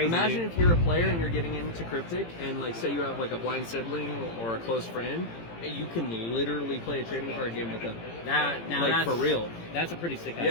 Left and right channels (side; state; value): right; late; 18 ms